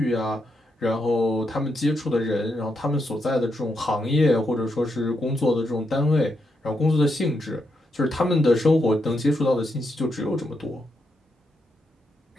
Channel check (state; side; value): normal; both; correlation 0.82